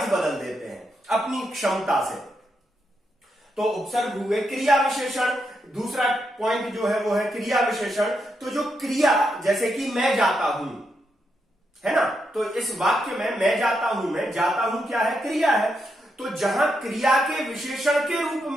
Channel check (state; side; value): normal; both; correlation 0.82